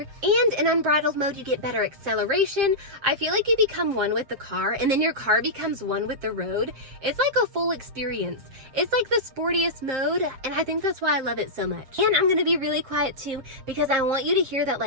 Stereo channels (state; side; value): late; left; 7.5 ms